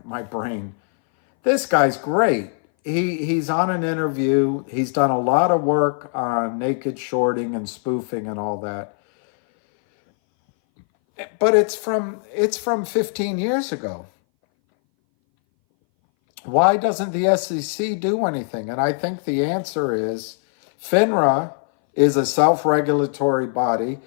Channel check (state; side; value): silent; right; 60 dB below the other